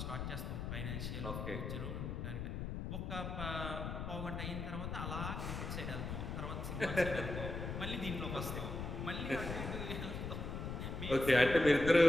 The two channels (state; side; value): noise; left; rumble, 4 dB below the sound